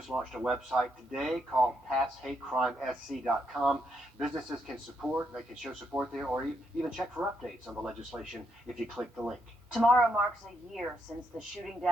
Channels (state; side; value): normal; both; correlation 0.78